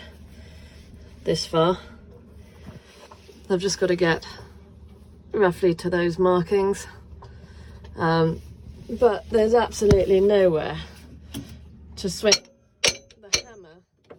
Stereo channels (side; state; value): both; identical; correlation 1.00